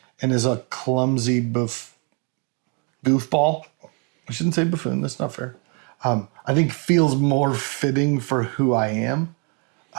and is a clumsy goofball. I shouldn't say buffoon. That's not fair. I think feels more fitting for who I am.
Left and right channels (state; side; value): quieter; left; 35.7 dB